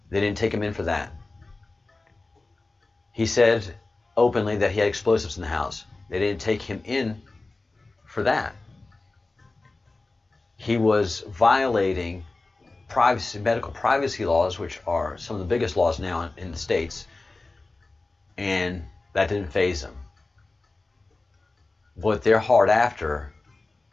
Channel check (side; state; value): right; quieter; 3.3 dB